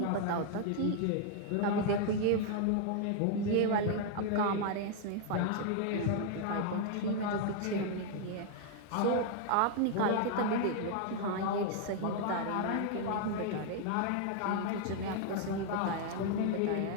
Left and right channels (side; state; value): both; different; correlation 0.00